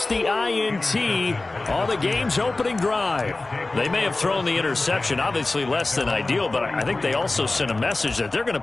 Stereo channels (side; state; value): right; quieter; 3.1 dB